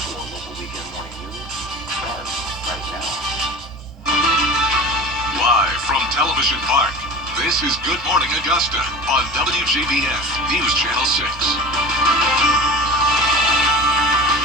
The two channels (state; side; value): normal; both; correlation 0.34